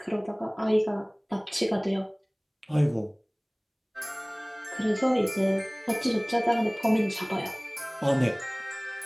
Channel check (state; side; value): identical; both; correlation 1.00